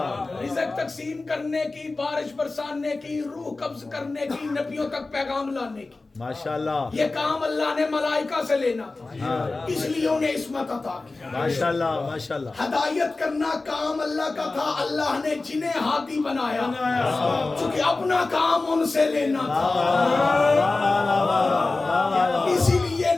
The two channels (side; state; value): right; quieter; 3.4 dB